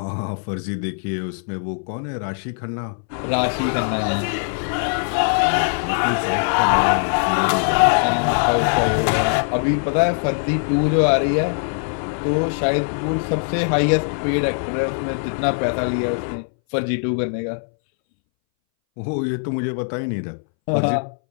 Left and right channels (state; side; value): silent; right; 63 dB below the other